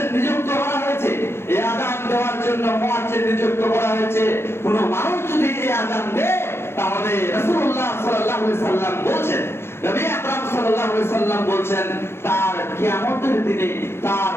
নিযুক্ত করা হয়েছে। এই আযান দেওয়ার জন্য মুয়াজ্জিন নিযুক্ত করা হয়েছে। কোন মানুষ যদি এই আযান দেয় তাহলে রাসূলুল্লাহ সাল্লাল্লাহু আলাইহি সাল্লাম বলছেন, নবী আকরাম সাল্লাল্লাহু আলাইহি সাল্লাম বলছেন, তার কিয়ামতের দিনে তার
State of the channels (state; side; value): late; right; 0.12 ms